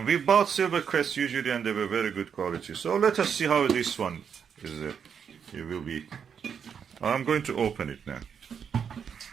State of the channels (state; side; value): quieter; left; 7.3 dB